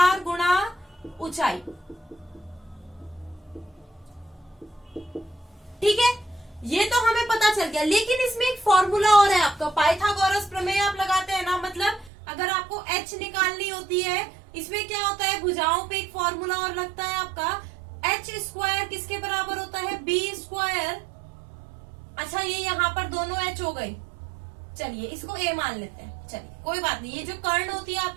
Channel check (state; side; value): drops out; left; at 12.1 s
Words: गुणा ऊंचाई। ठीक है, ये तो हमें पता चल गया। लेकिन इसमें एक फॉर्मूला और है आपका, पाइथागोरस प्रमेय आप लगाते हैं ना, मतलब अगर आपको h निकालनी होती है, इसमें क्या होता है? भुजाओं पे एक फॉर्मूला और लगता है आपका, h स्क्वायर किसके बराबर होता है? b square. अच्छा, ये यहाँ पर दोनों h हो गए। चलिए इसको a मान लेते हैं। चलिए कोई बात नहीं, ये जो कर्ण होती है